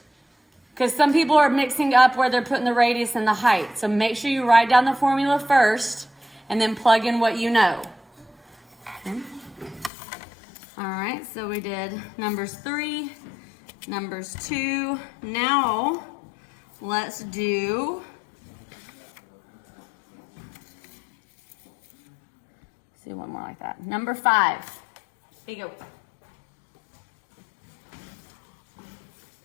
Because some people are mixing up where they're putting the radius and the height. So make sure you write down the formula first and then plug in what you know. Okay. All right, so we did numbers 3, numbers 2. Now let's do one more like that. Number 5. Here you go.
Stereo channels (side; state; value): right; drops out; at 9.9 s